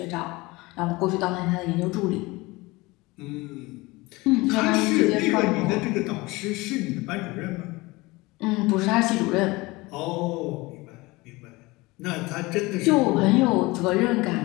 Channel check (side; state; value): right; quieter; 22.4 dB